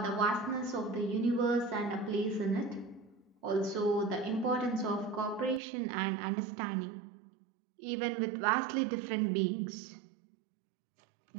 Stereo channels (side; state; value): left; drops out; at 5.6 s